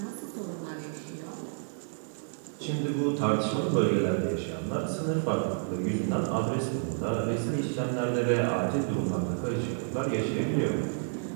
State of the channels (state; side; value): silent; left; digital silence